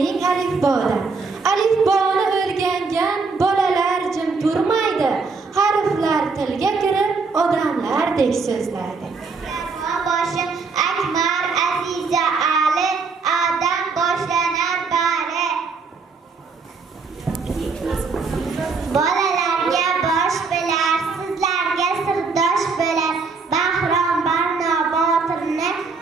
alifbodan. Alifboni o'rgangan bolalar jim turmaydi. Harflar tilga kirib odamlardek so'zlaydi. Boshi Akbar, Aziza, Ali, Adam boshlanar bari. Bolalarga bosh bo'lar, sizlarga sirdosh bo'lar. Bahrom Barno Botirni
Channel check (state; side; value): quieter; left; 4.5 dB